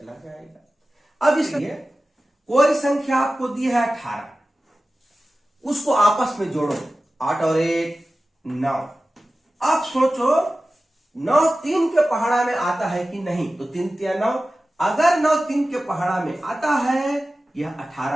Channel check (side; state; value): both; normal; correlation 0.95